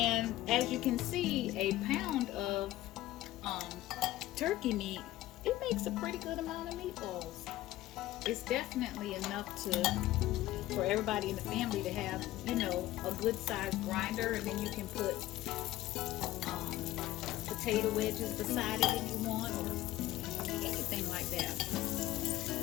as you can see, a pound of turkey meat, it makes a pretty good amount of meatballs. It's definitely enough for everybody in the family to have, a good sized grinder, and then you can put potato wedges beside it if you want, or anything like that.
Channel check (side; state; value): right; quieter; 15.7 dB